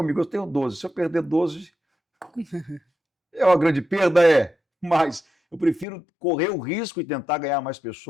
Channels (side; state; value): right; drops out; at 5.9 s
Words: eu tenho 12, se eu perder 12, é uma grande perda, é, mas eu prefiro correr o risco e tentar ganhar mais